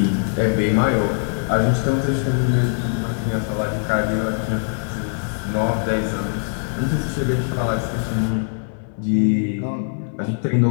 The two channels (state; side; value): silent; right; 65 dB below the other